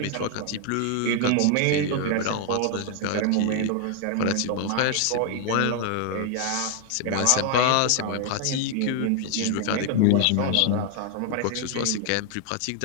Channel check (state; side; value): different; both; correlation 0.00